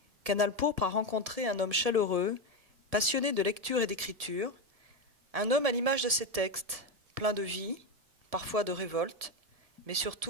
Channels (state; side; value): late; left; 1.6 ms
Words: Canal Pourpre a rencontré un homme chaleureux, passionné de lecture et d'écriture, un homme à l'image de ses textes, plein de vie, parfois de révolte, mais